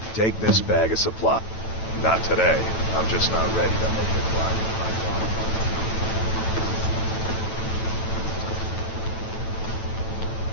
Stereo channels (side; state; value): right; late; 9.1 ms